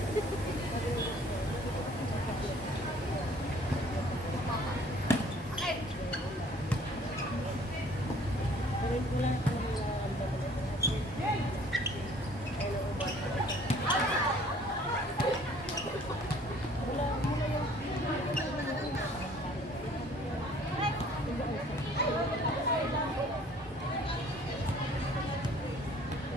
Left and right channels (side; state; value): both; normal; correlation 0.55